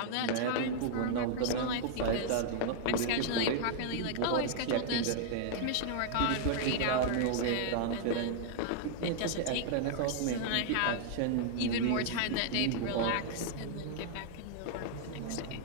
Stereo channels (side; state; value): both; different; correlation -0.01